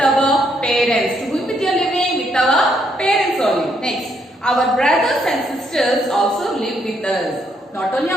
our parents. To be with your living with our parents only. Next, our brothers and sisters also live with us. Not only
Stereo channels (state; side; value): normal; both; correlation 0.73